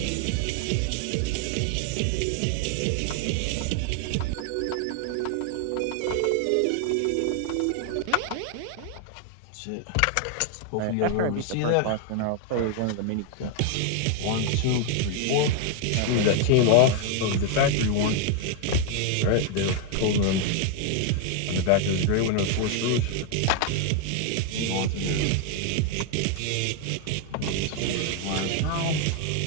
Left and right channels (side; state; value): both; different; correlation 0.01